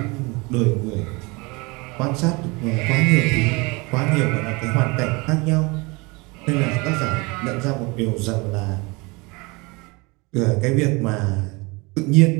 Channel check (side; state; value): left; quieter; 26.3 dB